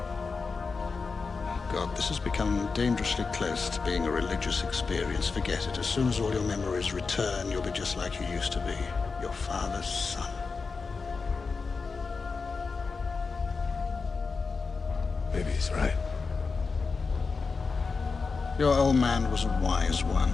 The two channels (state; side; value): quieter; right; 4.6 dB